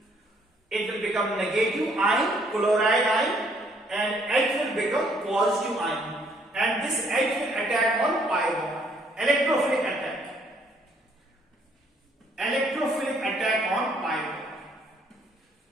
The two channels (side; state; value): both; normal; correlation 0.66